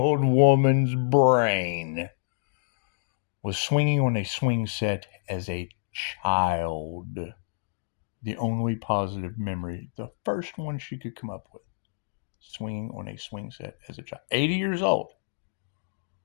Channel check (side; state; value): right; silent; digital silence